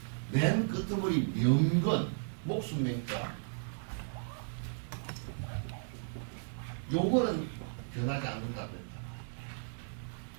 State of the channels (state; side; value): silent; left; digital silence